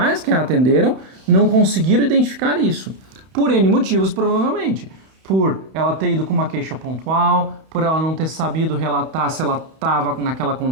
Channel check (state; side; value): late; left; 31 ms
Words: que a atenderam não conseguiram identificar isso, por N motivos provavelmente. Por ela ter ido com uma queixa pontual, por ela não ter sabido relatar se ela estava naquela